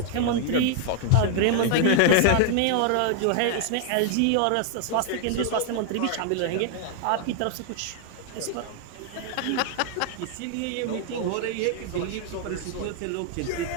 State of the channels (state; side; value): different; both; correlation 0.00